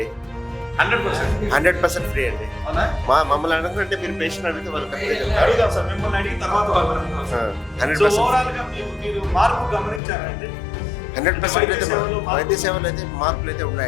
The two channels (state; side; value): drops out; right; at 10.0 s